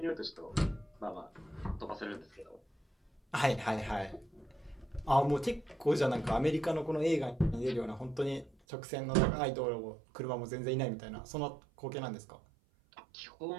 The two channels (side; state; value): left; drops out; at 8.6 s